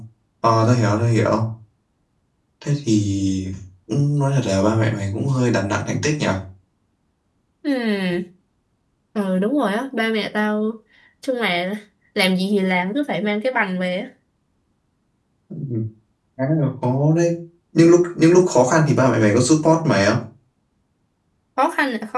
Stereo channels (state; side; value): identical; both; correlation 1.00